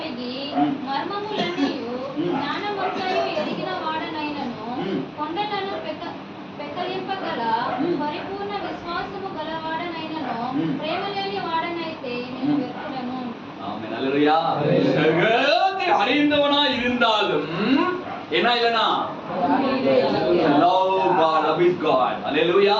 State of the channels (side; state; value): both; identical; correlation 1.00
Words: మర్మములన్నీయు జ్ఞానమంతయు ఎరిగిన వాడనైనను కొండలను పెకలింపగల పరిపూర్ణ విశ్వాసము గలవాడనైనను ప్రేమ లేని వాడనైతే నేను వ్యర్థుడను. ஆமென். அல்லேலூயா. சகலத்தை அறிந்தவனாய் இருந்தாலும் என்ன இல்லனா? love God, love is God.